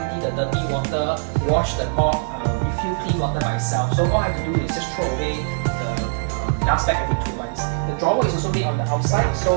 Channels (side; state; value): left; silent; 64 dB below the other